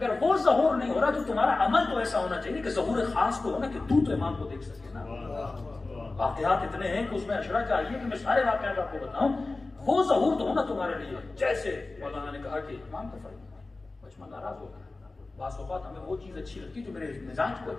وہ ظہور نہیں ہو رہا تو تمہارا عمل تو ایسا ہونا چاہیے کہ ظہور خاص تو ہونا کہ تو امام کو دیکھ سکے نا. واقعات اتنے ہیں کہ اس میں اشرا چاہیے کہ میں سارے واقعات آپ کو بتاؤں. وہ ظہور تو ہونا تمہارے لیے. جیسے مولانا نے کہا کہ امام کا فرمان بچما ناراض ہوگا, بعض اوقات ہمیں وہ چیز اچھی لگتی جو میرے مزاج کو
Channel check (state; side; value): quieter; right; 3.3 dB